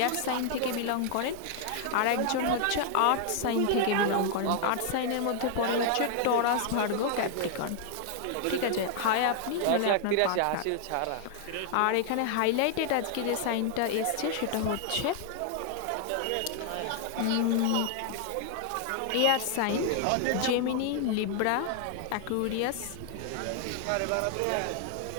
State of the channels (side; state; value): both; different; correlation 0.00